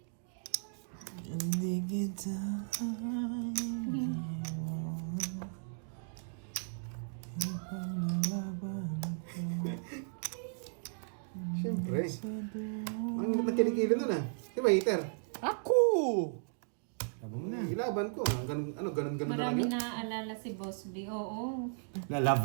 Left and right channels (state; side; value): silent; left; digital silence